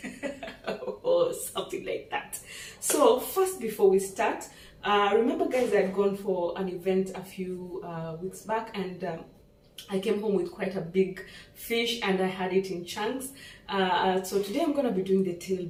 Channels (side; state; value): both; identical; correlation 1.00